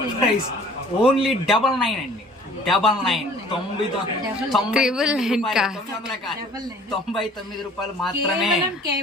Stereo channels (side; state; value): both; normal; correlation 0.51